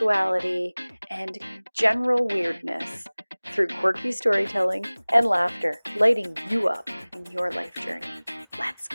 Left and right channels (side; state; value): both; inverted; correlation -1.00